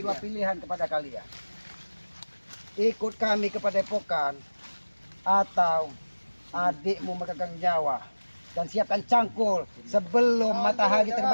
adiknya. pilihan kepada kalian. Ikut kami ke Padepokan atau adikmu memegang nyawa dan siapkan cangkul sebelum matahari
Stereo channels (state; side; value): inverted; both; correlation -1.00